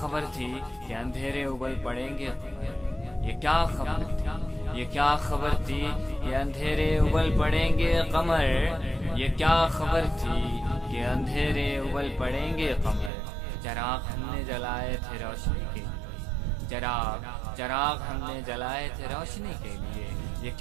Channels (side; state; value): left; drops out; at 13.1 s